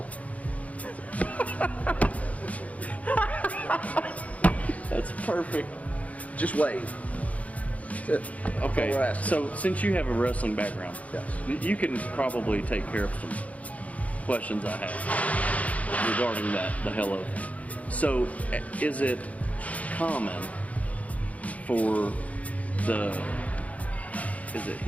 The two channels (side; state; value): right; late; 0.069 ms